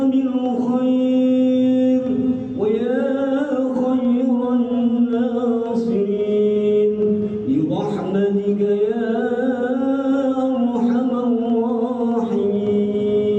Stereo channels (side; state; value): both; identical; correlation 1.00